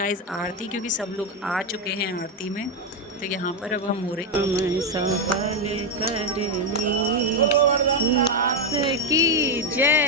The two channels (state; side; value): normal; both; correlation 0.06